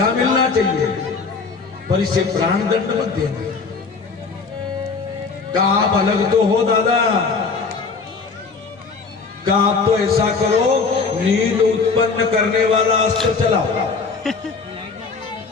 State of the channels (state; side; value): quieter; right; 4.7 dB